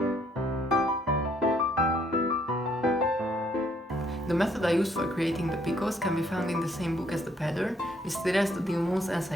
The method I used for creating the picots can be found in the same book as the pattern, it's the Dillman's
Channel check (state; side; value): normal; both; correlation 0.67